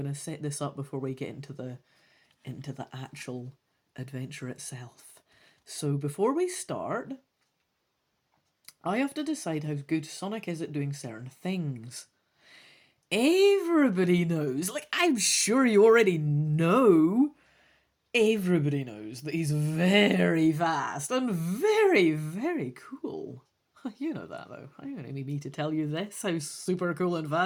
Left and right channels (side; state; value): both; identical; correlation 1.00